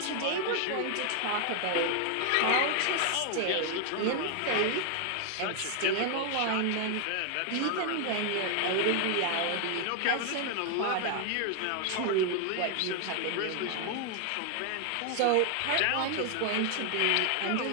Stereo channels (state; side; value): different; both; correlation 0.00